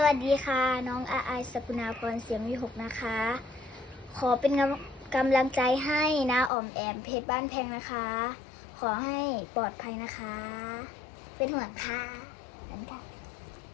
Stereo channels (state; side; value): drops out; right; at 6.5 s